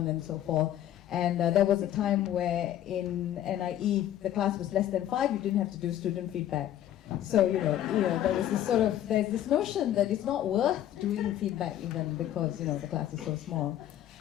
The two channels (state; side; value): quieter; right; 11.9 dB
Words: and so forth. And there was a time where in NIE, the class was less than 5, you didn't have to do student feedback. So, there was there's this notion that it's not worth doing feedback even because, the class is so small.